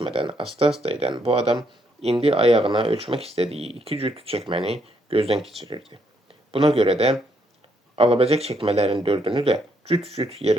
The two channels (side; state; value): both; normal; correlation 0.74